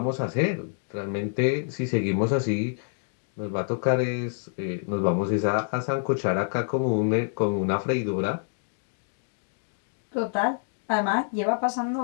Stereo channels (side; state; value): right; silent; digital silence